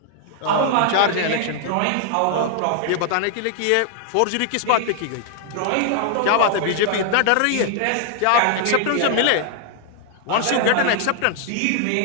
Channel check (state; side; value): different; both; correlation 0.00